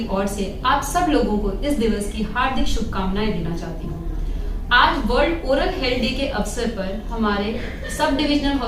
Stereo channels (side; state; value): both; identical; correlation 1.00